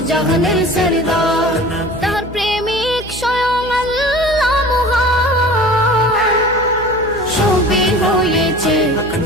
জাহানের সরদার। তার প্রেমিক স্বয়ং আল্লাহ মহান, সবই হয়েছে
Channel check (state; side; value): noise; left; hum, 15 dB below the sound